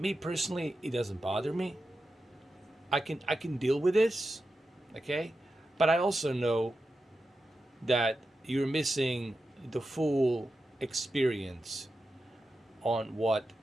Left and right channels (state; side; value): normal; both; correlation 0.90